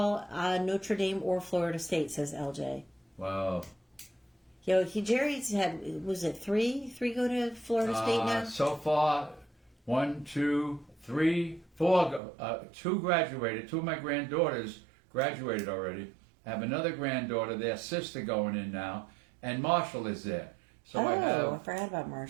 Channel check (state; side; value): drops out; left; at 12.2 s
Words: on Notre Dame or Florida State, says LJ. Wow. Jerry's had, was it three go to Florida State now? So far, 1, 2, 3, 4. 2 graduated. 2 of my granddaughters graduated already. I have another granddaughter, their sister, going in now, and Marshall is there. So I forgot about